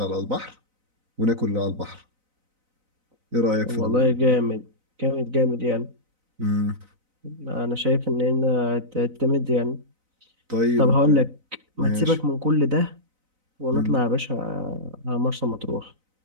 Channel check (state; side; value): late; left; 4.0 ms